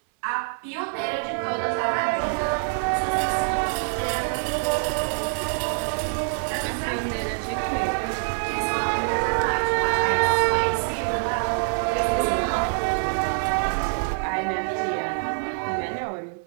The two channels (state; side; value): silent; left; 62 dB below the other